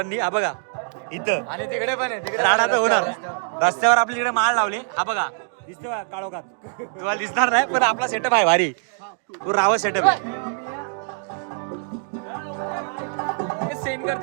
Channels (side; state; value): left; silent; digital silence